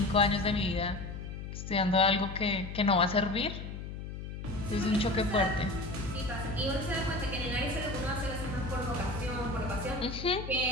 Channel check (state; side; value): noise; left; hum, 8 dB below the sound